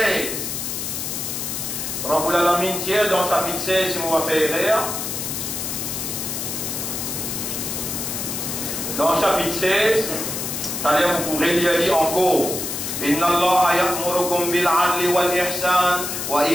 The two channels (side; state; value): left; noise; hiss, 4 dB below the sound